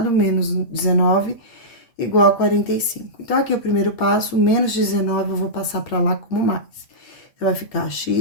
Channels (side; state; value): right; late; 8.5 ms